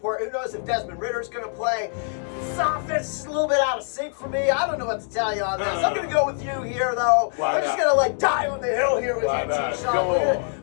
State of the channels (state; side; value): silent; right; 62 dB below the other